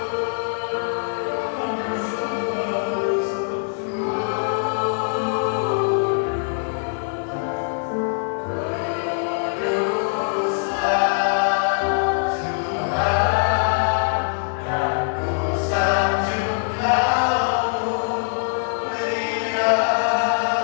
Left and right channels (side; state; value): right; silent; digital silence